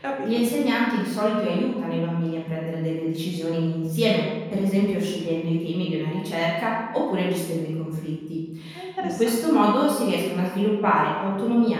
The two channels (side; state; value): both; identical; correlation 1.00